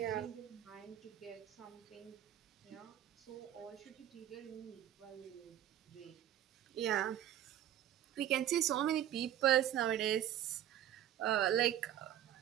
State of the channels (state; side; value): quieter; left; 11.4 dB